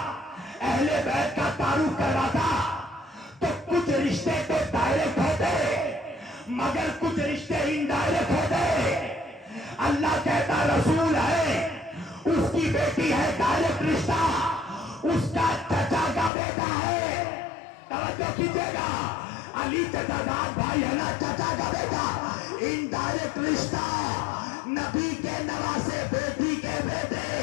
اہل بیت کا تعارف کرواتا تو کچھ رشتے تو ڈائریکٹ ہوتے مگر کچھ رشتے انڈائریکٹ ہوتے۔ اللہ کہتا رسول ہے، اس کی بیٹی ہے ڈائریکٹ رشتہ، اس کا چچا کا بیٹا ہے۔ توجہ کیجئے گا، علی چچا داد بھائی ہے نا، چچا کا بیٹا، انڈائریکٹ رشتہ۔ نبی کے نواسے بیٹی کے بیٹے،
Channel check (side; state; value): right; drops out; at 16.3 s